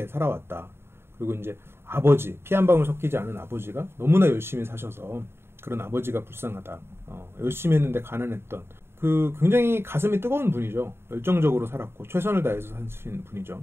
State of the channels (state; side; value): late; left; 0.12 ms